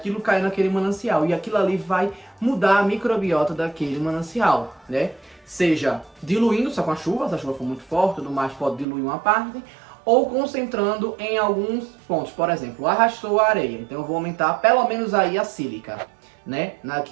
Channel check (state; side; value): drops out; left; at 8.8 s